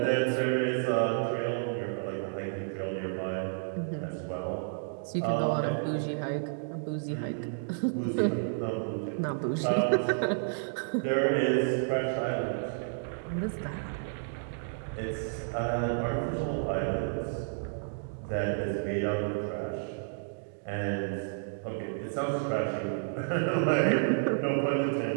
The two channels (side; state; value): left; silent; digital silence